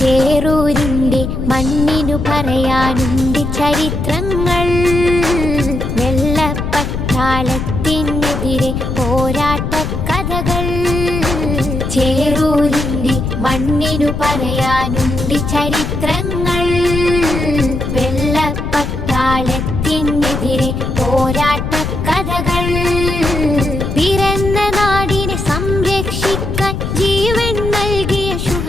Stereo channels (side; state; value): left; noise; rumble, 3 dB below the sound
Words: ചേറൂരിന്റെ മണ്ണിനു പറയാനുണ്ട് ചരിത്രങ്ങൾ. വെള്ളപ്പട്ടാളത്തിനെതിരെ പോരാട്ട കഥകൾ. ചേറൂരിന്റെ മണ്ണിനു പറയാനുണ്ട് ചരിത്രങ്ങൾ. വെള്ളപ്പട്ടാളത്തിനെതിരെ പോരാട്ട കഥകൾ. പിറന്ന നാടിനെ സംരക്ഷിക്കാൻ ജീവൻ നൽകിയ